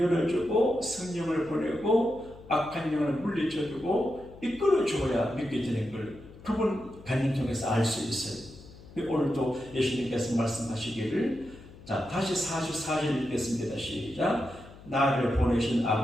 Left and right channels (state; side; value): noise; left; hum, 19 dB below the sound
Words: 열어주고 성령을 보내고 악한 영을 물리쳐주고 이끌어줘야 믿게 되는 걸 그분 간증 통해서 알 수 있어요. 오늘도 예수님께서 말씀하시기를 자 다시 44절 읽겠습니다. 시작. 나를 보내신